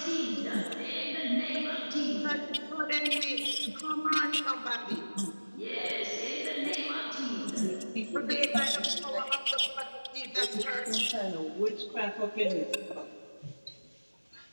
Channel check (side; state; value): both; inverted; correlation -1.00